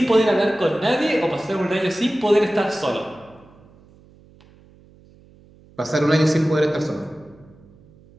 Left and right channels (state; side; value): noise; right; hum, 27 dB below the sound